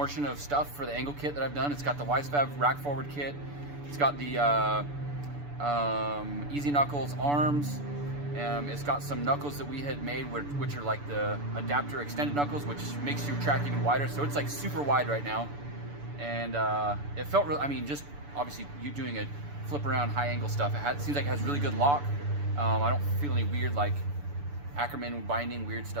of stuff for the angle kit that I've done. It's got the Wisefab rack forward kit. It's got the Easy Knuckles arms. It's got some knuckles that we had made, which are like the adapter extended knuckles, which makes your track even wider. So it's like super wide right now. And it felt real. I mean, just obviously you doing a flip around high angle stuff, it seems like it has really good lock. I don't feel any weird like Ackerman binding weird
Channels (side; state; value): left; late; 6.9 ms